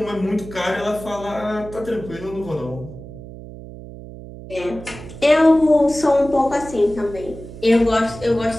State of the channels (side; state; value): right; noise; hum, 14 dB below the sound